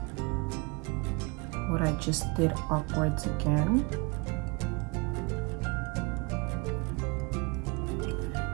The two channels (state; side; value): quieter; left; 28.0 dB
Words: what I just did upwards again.